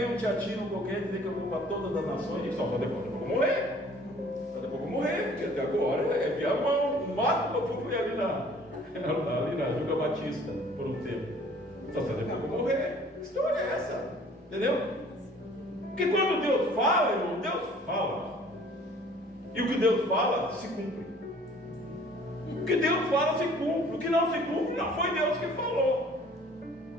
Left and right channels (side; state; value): both; normal; correlation 0.53